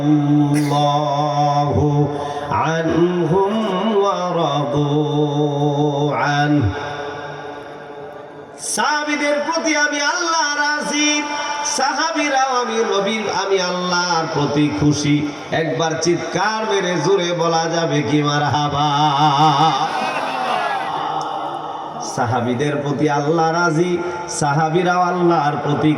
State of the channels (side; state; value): both; identical; correlation 1.00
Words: আনহুম ওয়া রাদু আন। সাহাবীদের প্রতি আমি আল্লাহ রাজি, সাহাবীরাও আমি আল্লাহর প্রতি খুশি। একবার চিৎকার মেরে জোরে বলা যাবে কি মারহাবা। সাহাবীদের প্রতি আল্লাহ রাজি, সাহাবীরাও আল্লাহর প্রতি